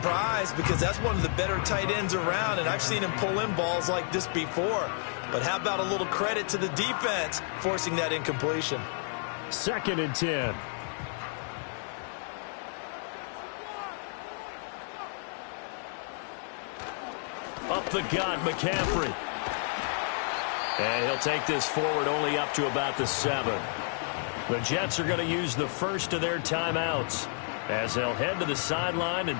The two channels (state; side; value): silent; right; 56 dB below the other